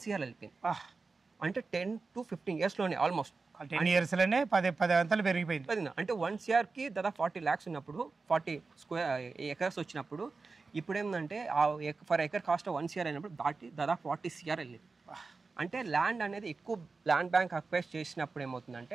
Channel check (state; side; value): quieter; left; 4.2 dB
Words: crore వెళ్ళిపోయింది. అంటే 10 to 15 yearsలోనే ఆల్మోస్ట్ 10 yearsలోనే 10 అంతలు పెరిగిపోయింది. అంటే 1 crore దాదాపు 40 lakhs ఉన్నప్పుడు 40 acres వచ్చినప్పుడు ఇప్పుడు ఏంటంటే ఫర్ ఎకర్ కాస్ట్ 1 crore అయినప్పుడు దాదాపు 40 crore వెళ్ళింది. అంటే ల్యాండ్ అనేది ఎక్కువ ల్యాండ్ బ్యాంక్ అక్వైర్ చేసినప్పుడు ఏమవుతుందంటే